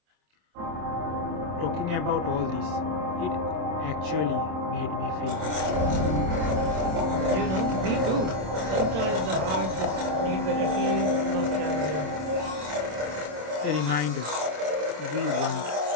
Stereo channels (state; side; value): late; left; 27 ms